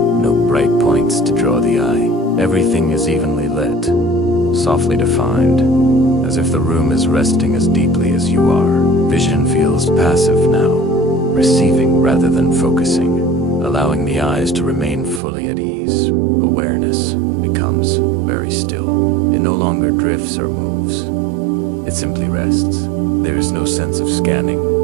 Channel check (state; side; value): drops out; left; at 15.2 s